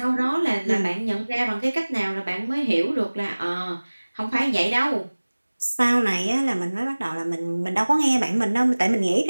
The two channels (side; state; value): both; inverted; correlation -1.00